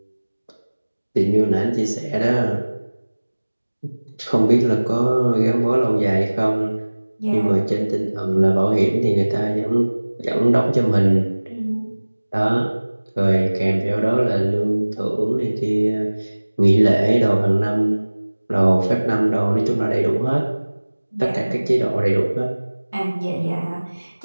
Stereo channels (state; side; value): inverted; both; correlation -1.00